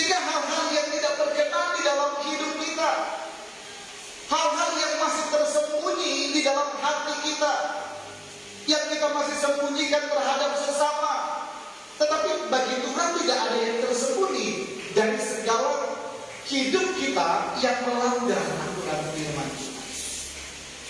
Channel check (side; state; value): both; identical; correlation 1.00